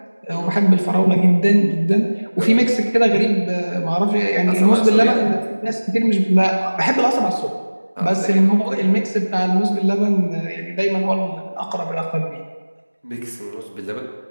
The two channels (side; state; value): both; inverted; correlation -1.00